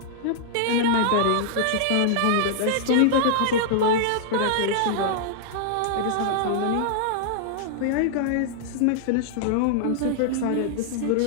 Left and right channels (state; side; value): different; both; correlation -0.01